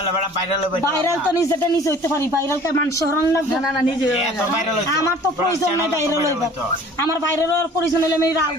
ভাইরাল তো নিজেটা নিজে হইতে পারি ভাইরাল কে মানুষ হরণ লাগবে না না নিজে আমার তো প্রয়োজন নাই ভাইরাল হইবার আমার ভাইরাল হওয়ার প্রয়োজন হলে আমি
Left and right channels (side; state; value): both; normal; correlation 0.49